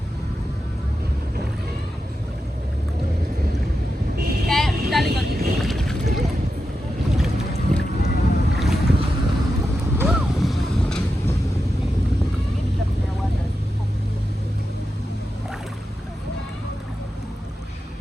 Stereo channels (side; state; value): both; normal; correlation 0.89